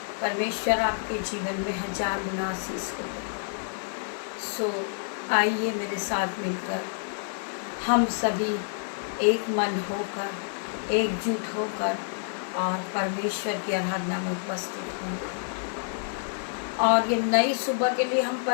परमेश्वर आपके जीवन में हजार गुना आशीष को दे। सो आइए मेरे साथ मिलकर हम सभी एक मन होकर एकजुट होकर और परमेश्वर की आराधना में उपस्थित होंगे और ये नई सुबह के लिए हम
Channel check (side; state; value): right; silent; digital silence